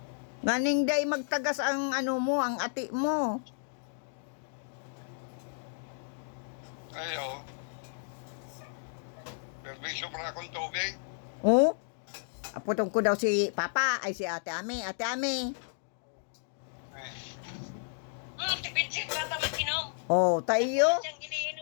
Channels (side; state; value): right; silent; digital silence